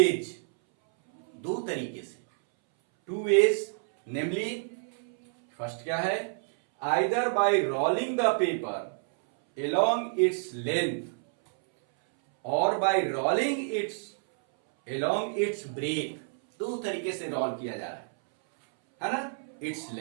दो तरीके से, टू वेज, नेमली फर्स्ट क्या है? Either by rolling the paper along its length और by rolling its along its breadth, दो तरीके से रोल किया जा रहा है ना? its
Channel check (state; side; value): silent; left; 59 dB below the other